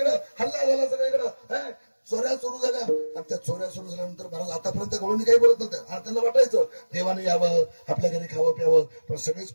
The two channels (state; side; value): inverted; both; correlation -1.00